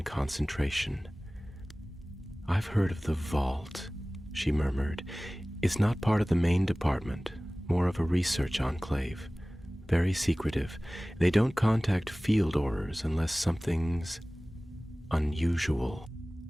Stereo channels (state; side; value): normal; both; correlation 0.98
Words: concentration. "I've heard of the Vault," she murmured. "It's not part of the main department, more of a research enclave. Very secretive. They don't contact field Aurors unless something's unusual."